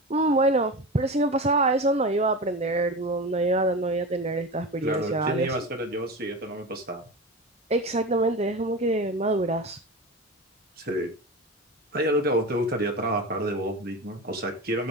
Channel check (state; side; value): normal; both; correlation 0.27